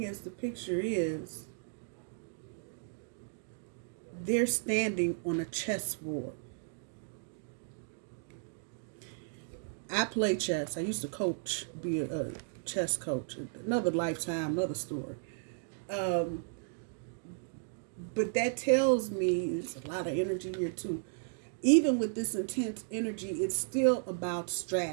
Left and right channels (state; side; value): silent; left; digital silence